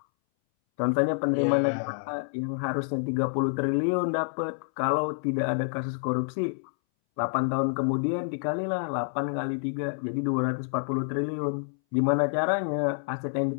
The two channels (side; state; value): right; silent; 60 dB below the other